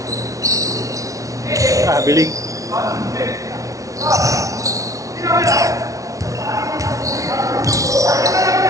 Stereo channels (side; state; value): left; late; 0.16 ms